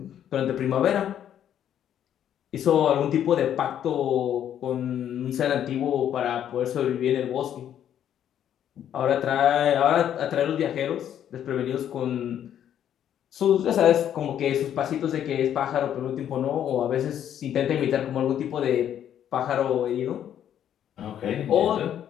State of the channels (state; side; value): quieter; right; 10.1 dB